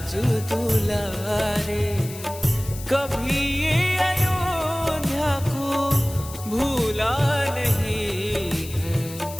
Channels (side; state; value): left; noise; hiss, 14 dB below the sound